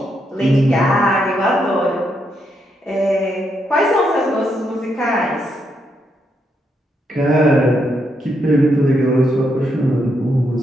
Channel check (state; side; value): normal; both; correlation 0.79